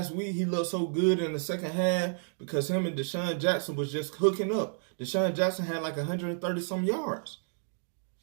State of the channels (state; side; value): silent; left; 57 dB below the other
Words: week, he looked so good in the second half because him and Deshaun Jackson was just hooking up. Deshaun Jackson had like 130 some yards.